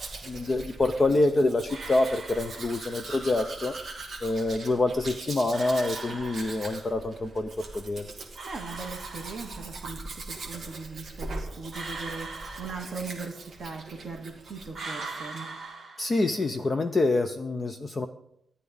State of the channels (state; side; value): normal; both; correlation 0.88